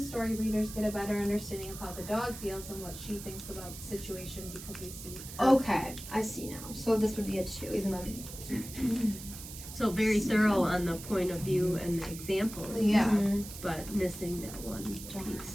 story, readers get a better understanding of how the dog feels and what she thinks about the situation because we see her. okay, I see now. So this would be a 2, even though. So very thorough on the point of view and the example, Yeah, Mhm. but missing that one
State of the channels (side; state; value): right; noise; hiss, 12 dB below the sound